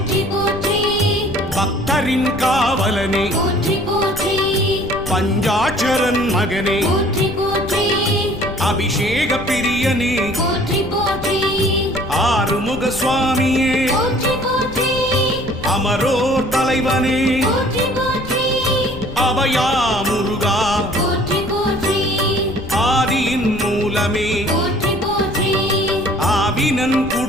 போற்றி பக்தரின் காவலனே போற்றி போற்றி பஞ்சாட்சரன் மகனே போற்றி போற்றி அபிஷேக பிரியனே போற்றி போற்றி ஆறுமுக சுவாமியே போற்றி போற்றி அமரோர் தலைவனே போற்றி போற்றி அபயா முருகா போற்றி போற்றி ஆதியின் மூலமே போற்றி போற்றி ஆவினன்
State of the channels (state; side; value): noise; left; rumble, 13 dB below the sound